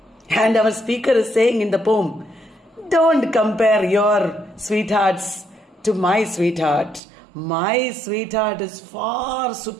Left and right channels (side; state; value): left; drops out; at 7.0 s